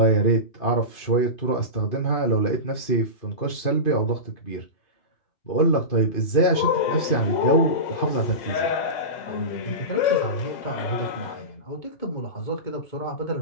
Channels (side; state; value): right; late; 2.5 ms